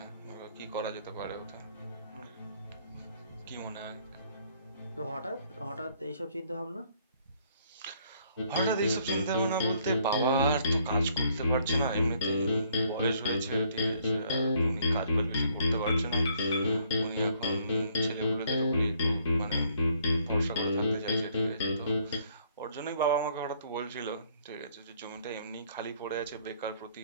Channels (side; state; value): both; inverted; correlation -0.65